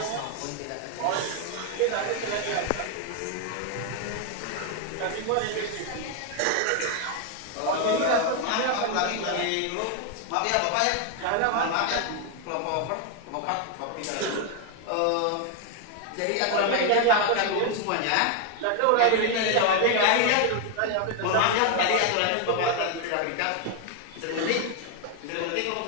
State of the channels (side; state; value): both; different; correlation 0.01